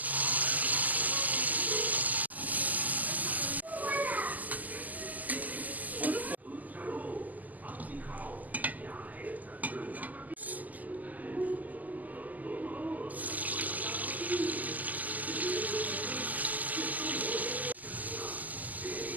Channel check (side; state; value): left; late; 0.080 ms